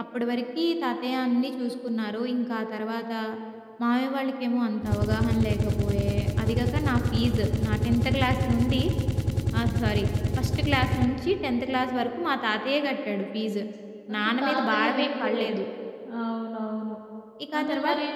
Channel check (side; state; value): both; identical; correlation 1.00